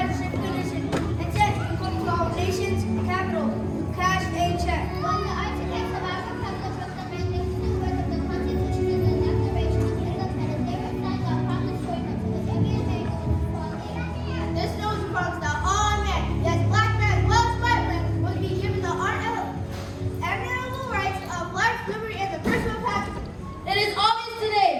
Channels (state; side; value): identical; both; correlation 1.00